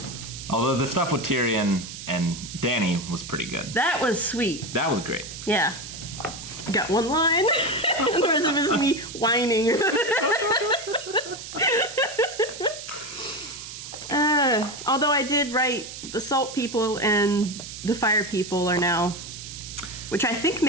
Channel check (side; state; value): right; noise; hiss, 11 dB below the sound